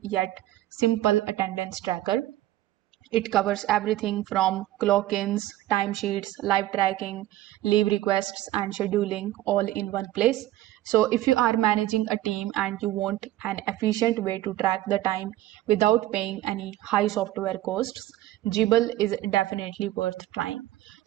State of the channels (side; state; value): left; quieter; 15.0 dB